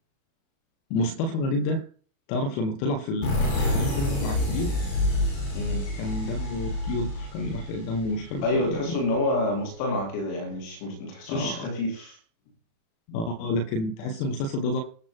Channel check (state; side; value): late; right; 36 ms